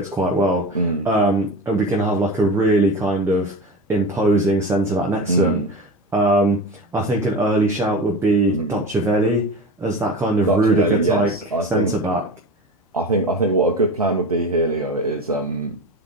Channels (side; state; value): both; normal; correlation 0.29